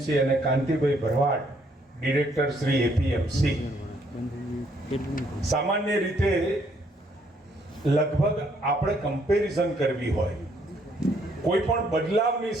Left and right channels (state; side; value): normal; both; correlation 0.69